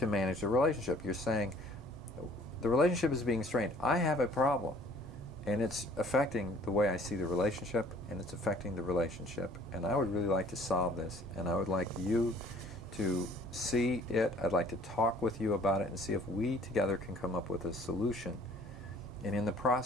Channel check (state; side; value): normal; both; correlation 0.55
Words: manage the relationship. You're saying, the relationship is being strained. I have a problem. And it's affecting the way I see the relationship, and it's affecting the relationship. And I would really like to solve this, and I would like you to see it. I'd like to talk with you about it and see if we together can come up with a solution. And in the